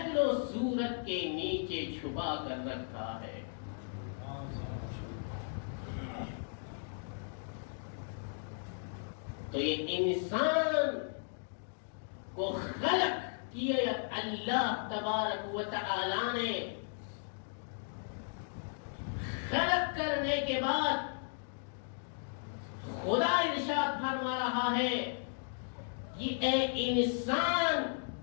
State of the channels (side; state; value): right; silent; digital silence